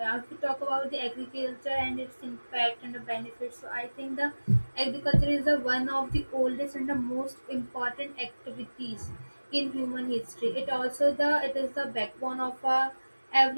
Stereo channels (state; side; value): inverted; both; correlation -1.00